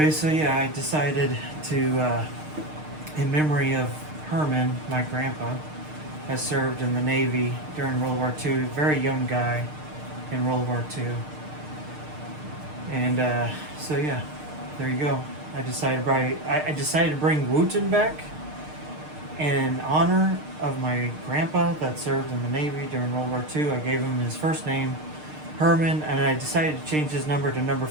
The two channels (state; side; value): late; left; 6.5 ms